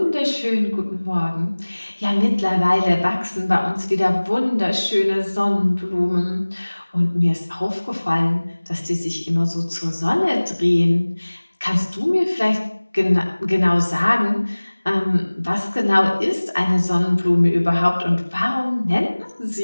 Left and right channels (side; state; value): both; inverted; correlation -1.00